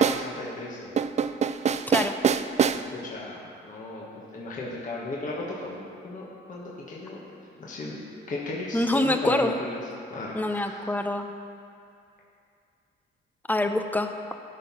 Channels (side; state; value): both; normal; correlation 0.57